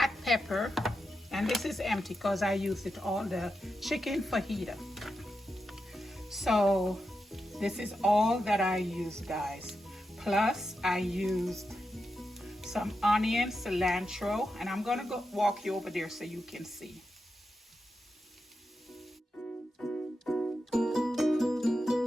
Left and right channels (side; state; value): both; normal; correlation 0.88